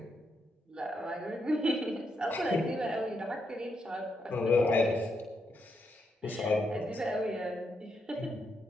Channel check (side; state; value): both; normal; correlation 0.80